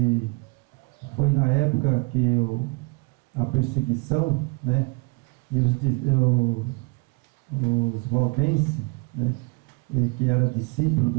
foi na época que a perseguição, né, e os valdenses, né, que era discípulo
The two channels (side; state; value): left; quieter; 27.9 dB